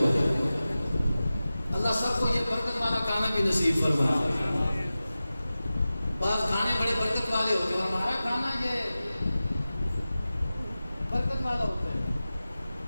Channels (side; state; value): both; inverted; correlation -0.95